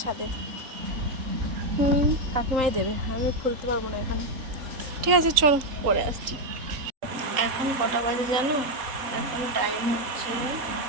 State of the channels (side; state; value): left; late; 3.8 ms